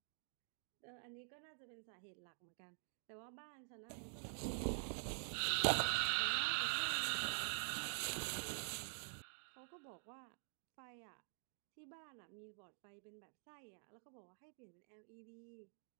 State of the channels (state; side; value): silent; left; digital silence